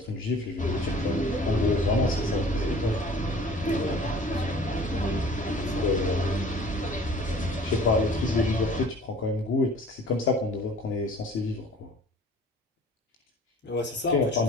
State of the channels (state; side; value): normal; both; correlation 0.48